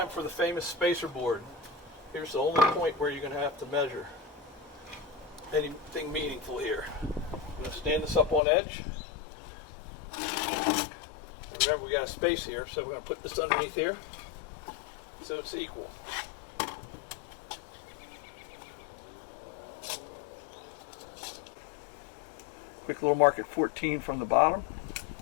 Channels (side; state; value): right; drops out; at 8.4 s